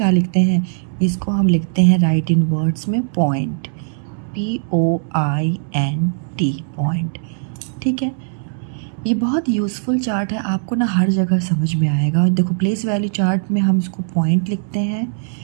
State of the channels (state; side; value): silent; left; digital silence